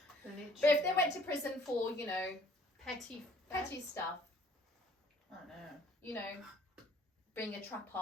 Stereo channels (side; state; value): both; normal; correlation 0.58